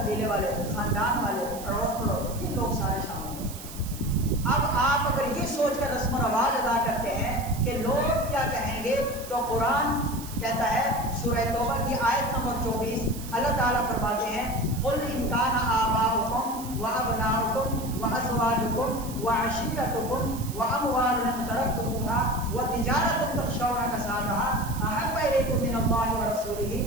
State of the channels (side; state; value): right; noise; hiss, 14 dB below the sound